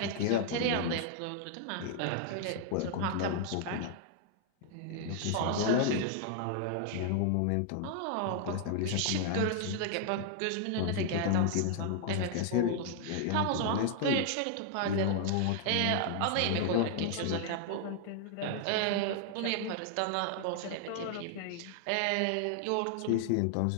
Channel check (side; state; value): both; different; correlation 0.00